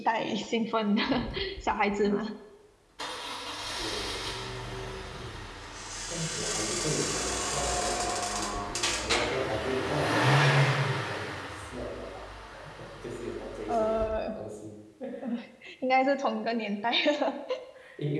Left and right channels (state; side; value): identical; both; correlation 1.00